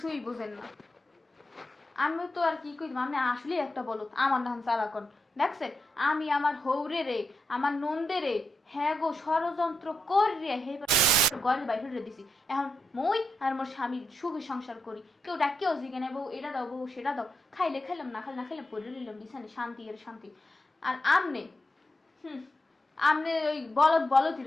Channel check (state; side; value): normal; both; correlation 0.85